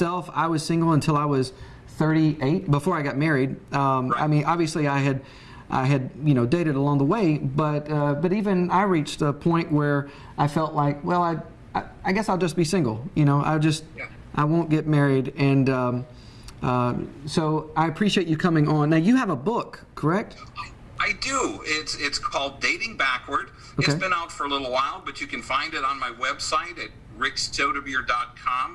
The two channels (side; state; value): both; identical; correlation 1.00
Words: I was single until I was 38, before I got married. Right. I mean, obviously I had you know, dated along the way, but even I reached a point where I felt like, well, I guess I'll just be single, you know, I won't get married. And so I appreciate you coming on. Now, you have a book, correct? I do. It's called Dating Backward. Okay. It's been out for a little while, but you can find it on my website at